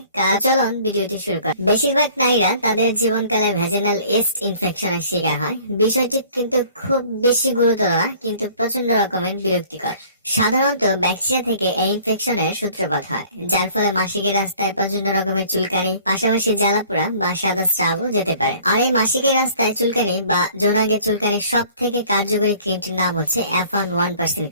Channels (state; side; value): inverted; both; correlation -0.53